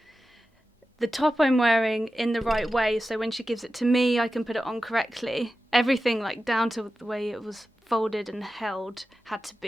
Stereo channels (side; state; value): both; normal; correlation 0.93